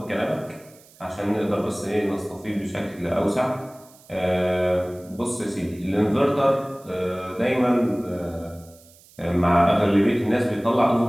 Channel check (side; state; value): right; noise; hiss, 26 dB below the sound